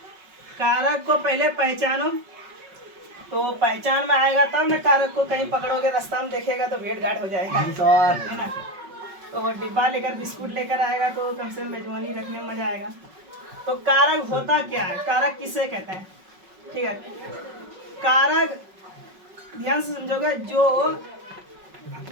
कारक को पहले पहचानो। तो पहचान में आएगा तब ना कारक को। कहीं पकड़ोगे रास्ता में देखेगा तो भेंट घाट हो जाएगा, है ना। तो वो डिब्बा लेकर बिस्कुट लेकर आएगा तो कम से कम मेजबानी रखने में मजा आएगा। तो कारक होता क्या है? कारक किसे कहते हैं? ठीक है, कारक ध्यान से समझोगे, जो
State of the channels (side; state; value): left; late; 5.4 ms